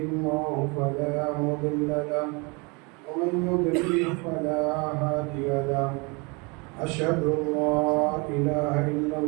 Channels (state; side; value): quieter; left; 29.3 dB